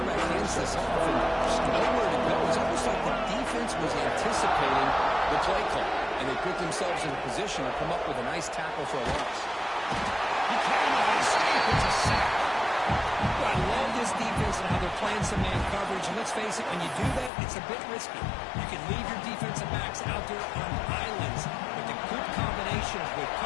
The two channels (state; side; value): drops out; right; at 17.3 s